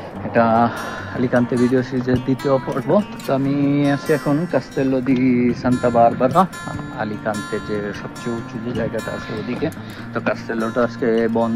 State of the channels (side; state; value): both; identical; correlation 1.00